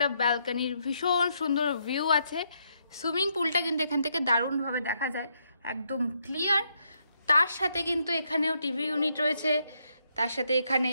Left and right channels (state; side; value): inverted; both; correlation -0.76